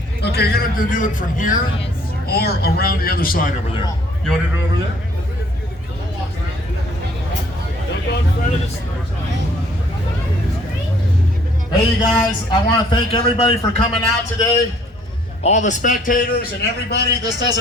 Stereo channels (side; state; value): both; normal; correlation 0.60